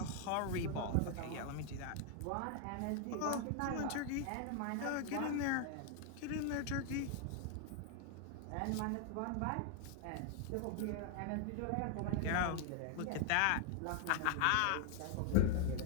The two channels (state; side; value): different; both; correlation 0.00